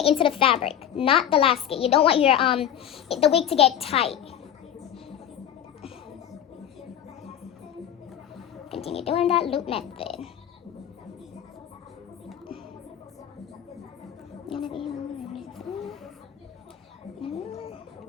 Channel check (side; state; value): right; quieter; 10.0 dB